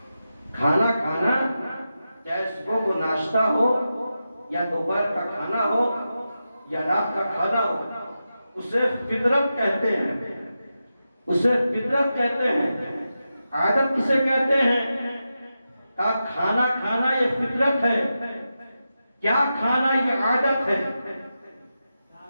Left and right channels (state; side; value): inverted; both; correlation -0.90